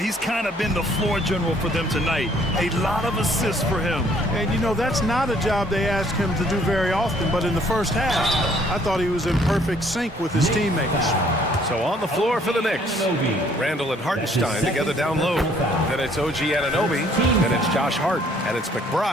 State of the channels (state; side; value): normal; both; correlation 0.62